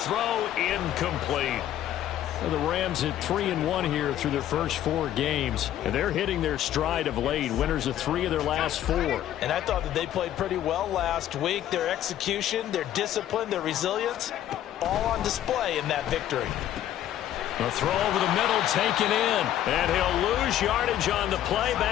incomplete. Well, the Rams at 3-1 here through their first 4 games, and they're hitting their stride of late. Winners of 3 of their last 4. And I thought that they played pretty well last week. Their execution, their discipline, their resilience, all on display in that victory. A throw over the middle taken in, and he'll lose yardage on the play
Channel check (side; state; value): right; quieter; 11.9 dB